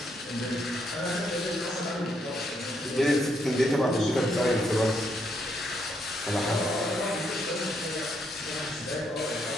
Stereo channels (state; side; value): normal; both; correlation 0.76